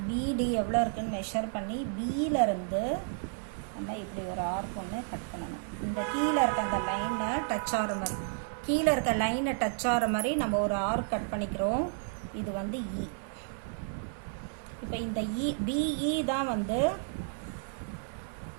பிடி எவ்வளோ இருக்குன்னு மெஷர் பண்ணி பியிலேருந்து நம்ம இப்படி ஒரு ஆர்க் ஒன்று கட் பண்ணணும். இந்த கீழே இருக்க அந்த லைனை டச் ஆகிற மாதிரி நம்ம ஒரு ஆர்க் கட் பண்ணிக்கிறோம். இது வந்து இ. இப்போ இந்த பிஇ தான் வந்து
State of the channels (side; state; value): left; silent; 56 dB below the other